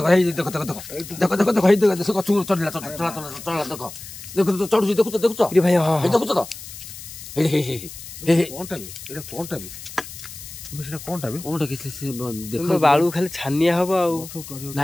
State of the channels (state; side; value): noise; left; hiss, 13 dB below the sound